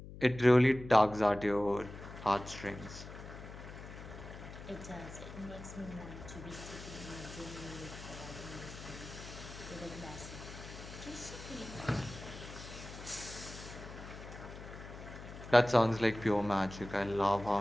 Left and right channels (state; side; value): noise; left; hum, 13 dB below the sound